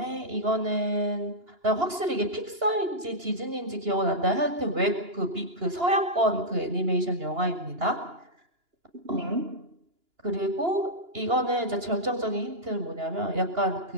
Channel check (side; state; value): left; late; 2.9 ms